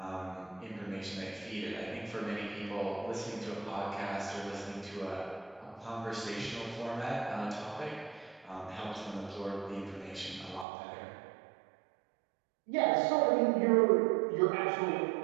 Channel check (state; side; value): drops out; left; at 10.7 s